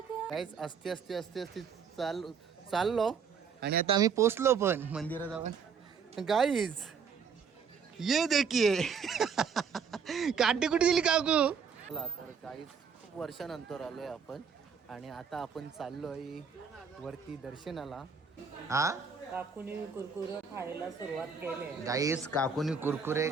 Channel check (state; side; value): quieter; left; 6.1 dB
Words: ग. काहीच असते असते असते असते चाललो आणि आता आम्ही पोचलो पण मंदिरात जाऊन. गाईज ये देखिए काठी कुठे दिली काकू. तर गाईज खूप वर्षानंतर आलोय आपण आणि आता आपण चाललोय वरती दर्शनाला. हा काकूनी कुरकुरे खायला सुरुवात केली. गाईज काकूनी कुरकुरे